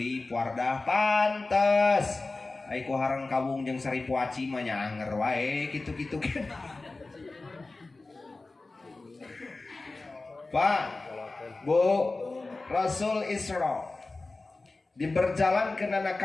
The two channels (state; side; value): quieter; right; 3.4 dB